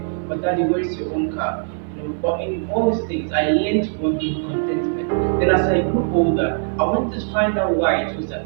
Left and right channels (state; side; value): silent; left; digital silence